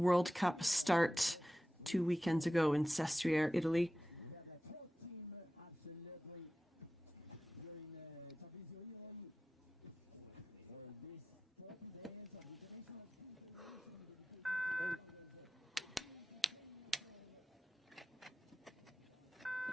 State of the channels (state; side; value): normal; both; correlation 0.94